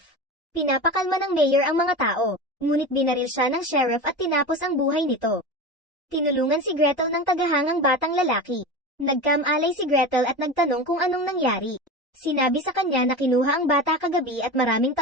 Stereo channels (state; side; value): normal; both; correlation 0.27